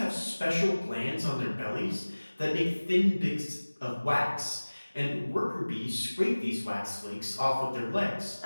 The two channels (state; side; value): inverted; both; correlation -1.00